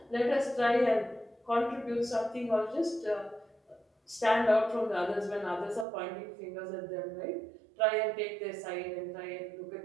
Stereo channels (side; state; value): left; drops out; at 5.9 s